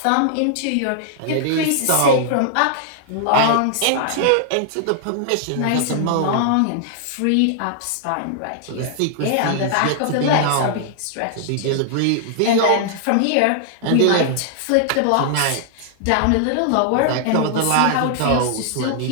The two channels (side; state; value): both; different; correlation -0.01